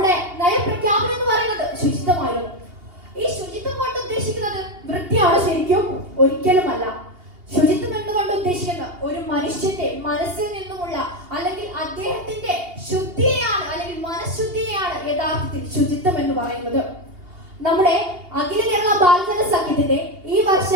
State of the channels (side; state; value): left; late; 2.8 ms